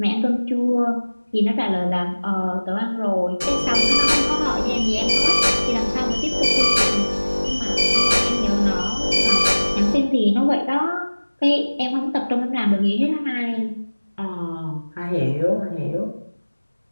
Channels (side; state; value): both; inverted; correlation -1.00